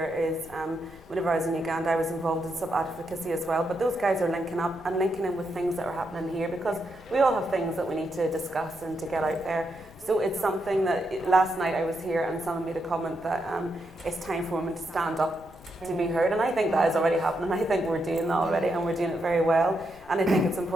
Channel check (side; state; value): left; noise; rumble, 23 dB below the sound